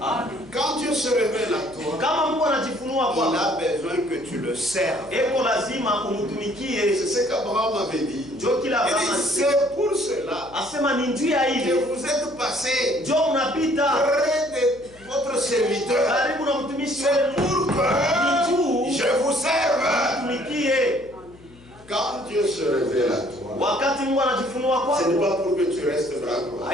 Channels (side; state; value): left; noise; hum, 23 dB below the sound